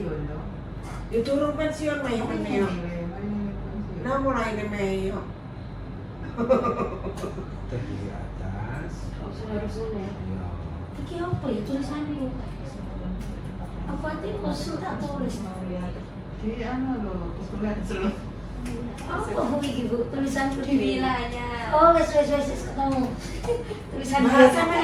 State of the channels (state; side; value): identical; both; correlation 1.00